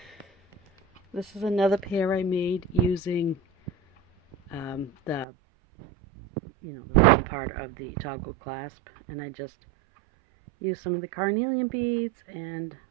This is another pair I made using the round part of the toggle clasp, and I just used some of the carnelian beads and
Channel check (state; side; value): drops out; left; at 5.2 s